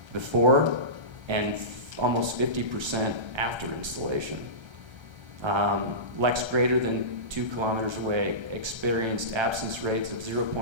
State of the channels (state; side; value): late; left; 1.3 ms